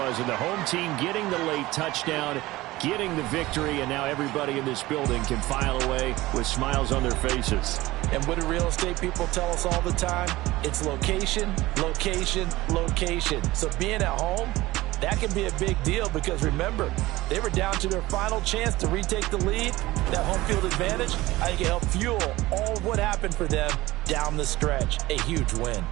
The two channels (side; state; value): left; quieter; 18.5 dB